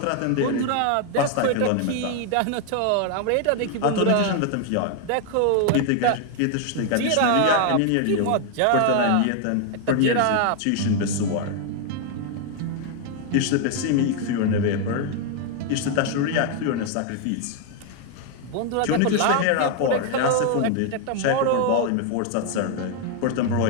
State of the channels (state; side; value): different; both; correlation 0.00